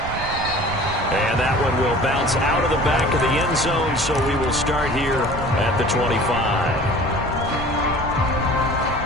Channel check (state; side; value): noise; right; rumble, 9 dB below the sound